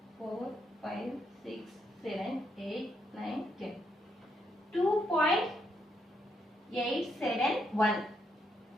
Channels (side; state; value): both; normal; correlation 0.77